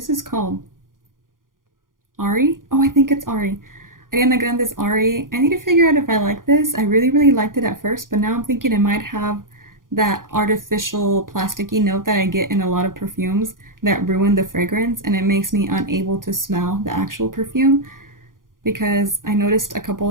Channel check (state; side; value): late; left; 0.90 ms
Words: this called? Ari? Oh, I think it's Ari. Ariana Grande's Ari. I need to figure out if I like this. I really, really liked it at first, but now I'm thinking it might have that artificial plasticky note that I get in a lot of perfumes that ruin the fragrance, and it makes me unable to smell the actual perfume because I noticed a couple